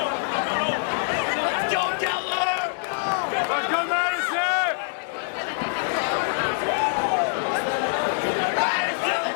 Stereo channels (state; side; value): silent; right; 62 dB below the other